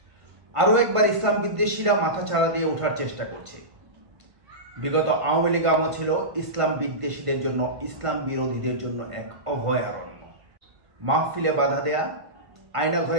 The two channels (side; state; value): left; late; 1.5 ms